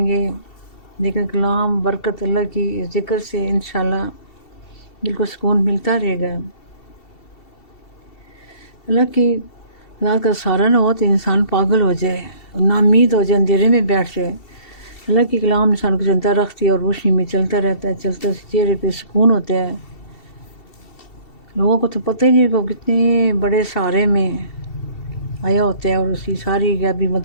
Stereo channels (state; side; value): late; right; 2.7 ms